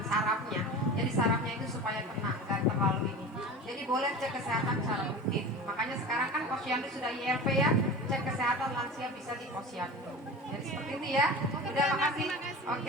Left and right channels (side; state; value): both; normal; correlation 0.33